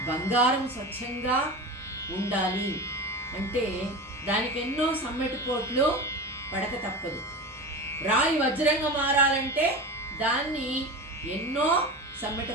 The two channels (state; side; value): normal; both; correlation 0.27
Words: బంగారం స్వచ్ఛంగా ఉండాలి అంటే దానికి ఎన్నో సమ్మెటిపోట్లు పడక తప్పదు. రాయి వజ్రంగా మారాలంటే దాన్ని ఎన్నో